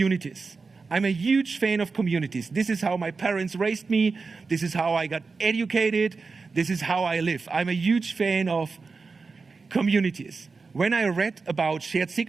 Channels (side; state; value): left; quieter; 4.4 dB